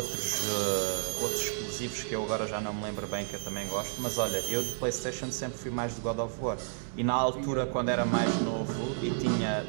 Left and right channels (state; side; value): silent; left; digital silence